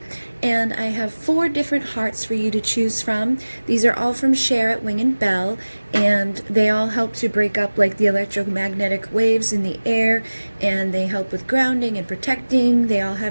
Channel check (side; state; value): both; inverted; correlation -1.00